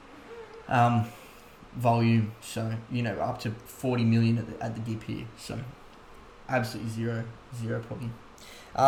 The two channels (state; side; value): identical; both; correlation 1.00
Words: volume, so up to 40 million at the dip here. So absolutely zero problem.